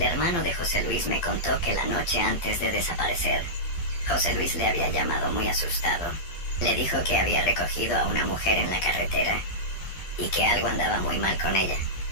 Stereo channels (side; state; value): right; late; 12 ms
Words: hermano de José Luis me contó que la noche antes de desaparecer, José Luis le había llamado muy asustado. Le dijo que había recogido a una mujer en la carretera y que algo andaba muy mal con ella,